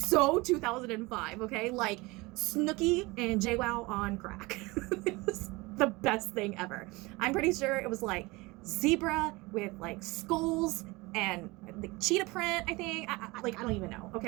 2005, okay? Snooki and JWoww on crack. It was the best thing ever. I'm pretty sure it was zebra with skulls and the cheetah print, I think. I don't even know,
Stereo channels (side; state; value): left; quieter; 23.3 dB